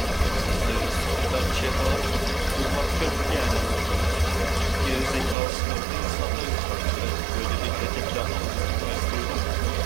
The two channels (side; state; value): left; drops out; at 5.4 s